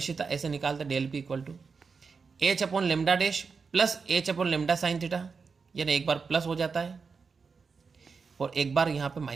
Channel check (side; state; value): left; quieter; 5.1 dB